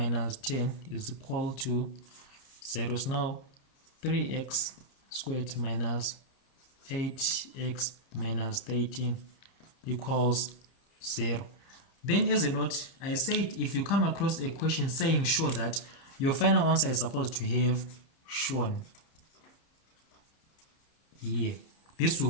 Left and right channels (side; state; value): right; late; 30 ms